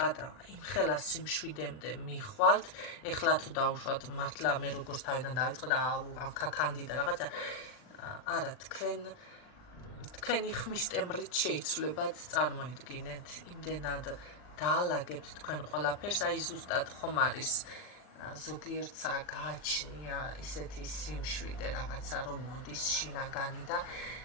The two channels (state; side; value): late; right; 39 ms